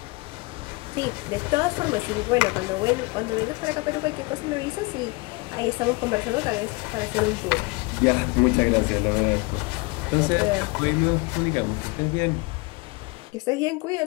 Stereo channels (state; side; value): quieter; right; 26.7 dB